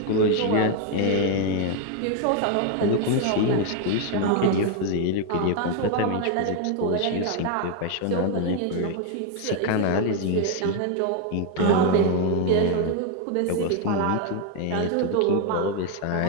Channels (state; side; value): different; both; correlation 0.01